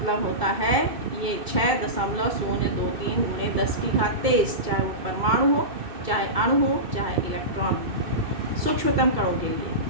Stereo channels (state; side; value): late; left; 2.2 ms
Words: होता है ये 6.023 गुणे 10 की घात 23, चाहे वो परमाणु हो, चाहे अणु हो, चाहे इलेक्ट्रॉन हो। सूक्ष्मतम कणों के लिए